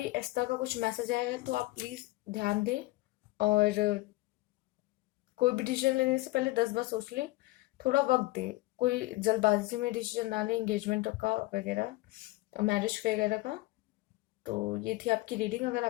इस तरह का कुछ मैसेज आया है, तो आप प्लीज़ ध्यान दें, और कोई भी डिसीजन लेने से पहले 10 बार सोच लें, थोड़ा वक्त दें, कोई जल्दबाजी में डिसीजन ना लें एंगेजमेंट का वगैरह, मैरिज वगैरह का। तो ये थी आपकी रीडिंग, अगर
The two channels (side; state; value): right; quieter; 20.0 dB